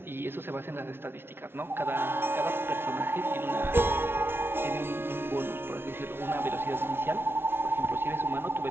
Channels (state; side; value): late; left; 0.11 ms